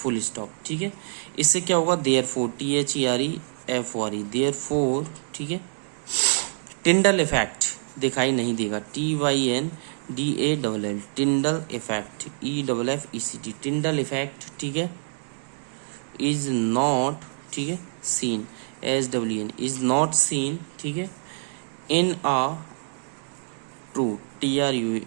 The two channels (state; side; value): silent; left; digital silence